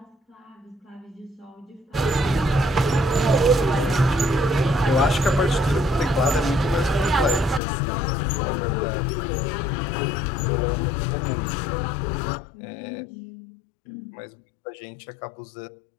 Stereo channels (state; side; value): drops out; right; at 7.6 s